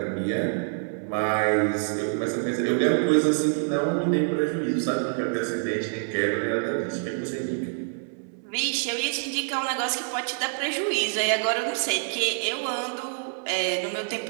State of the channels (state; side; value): silent; left; 61 dB below the other